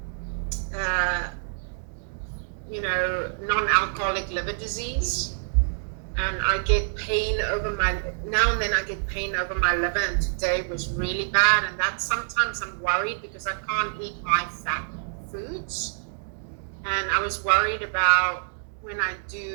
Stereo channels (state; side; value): silent; left; digital silence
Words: you know, non-alcoholic liver disease, and I get pain over now and then I get pain over my liver, and today was really bad, and that sometimes I'm worried because I can't eat high fat foods, and I was worried about when I